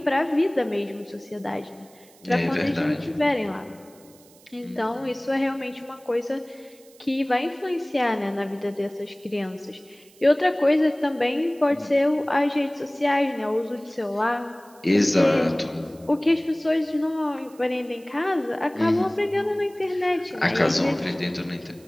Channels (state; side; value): noise; right; hiss, 27 dB below the sound